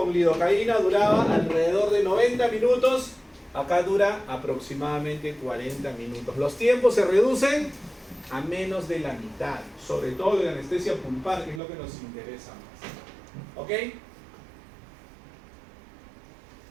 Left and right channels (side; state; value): left; drops out; at 11.6 s